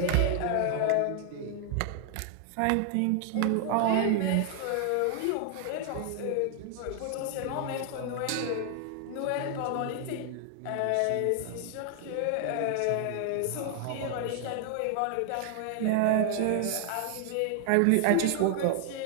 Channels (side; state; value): both; different; correlation 0.00